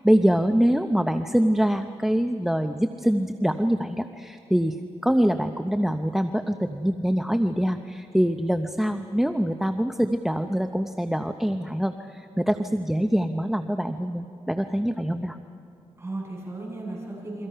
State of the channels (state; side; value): normal; both; correlation 0.98